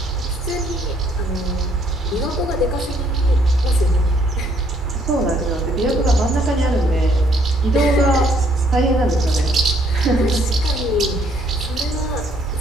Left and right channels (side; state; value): both; normal; correlation 0.66